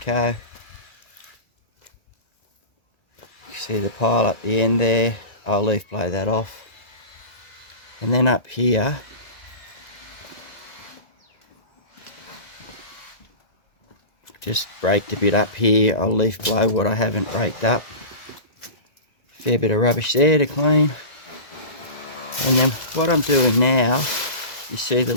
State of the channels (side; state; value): right; late; 1.9 ms